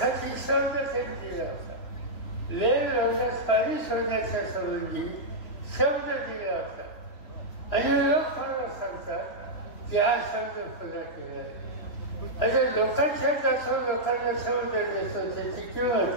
शब्द त्यांनी दिला होता. लेन रोगास पाणी सोडण्याच्या संबंधी शब्द दिला होता. आणि लोक मला सांगतात की हा शब्द पुन्हा केला आहे. आता लोकांच्या जास्त लोकांना शब्द देतो, त्याची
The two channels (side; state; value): right; late; 3.0 ms